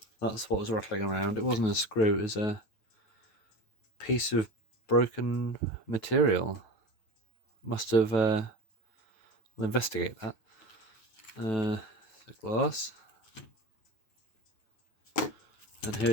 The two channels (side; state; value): right; late; 9.2 ms